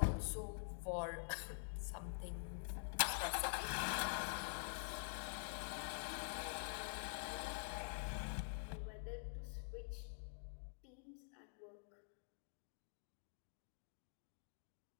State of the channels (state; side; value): silent; right; digital silence